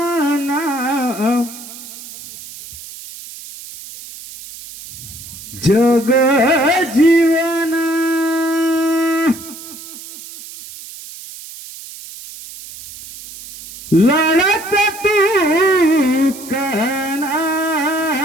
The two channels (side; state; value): right; noise; hiss, 15 dB below the sound